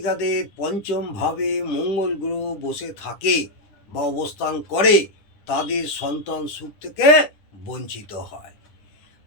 পঞ্চম ভাবে মঙ্গল গ্রহ বসে থাকে বা অবস্থান করে তাদের সন্তান সুখ থেকে বঞ্চিত হয়।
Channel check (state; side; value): late; right; 10 ms